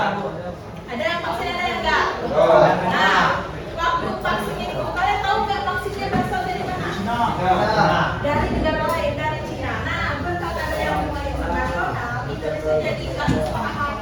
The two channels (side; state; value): both; identical; correlation 1.00